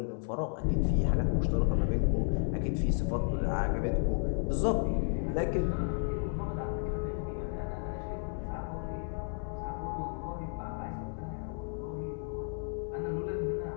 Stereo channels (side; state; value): right; silent; 56 dB below the other